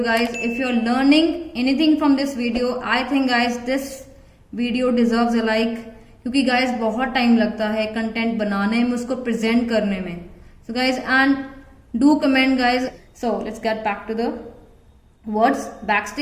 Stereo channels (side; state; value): both; identical; correlation 1.00